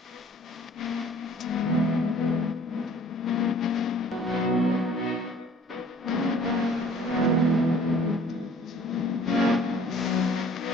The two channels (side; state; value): both; normal; correlation 0.52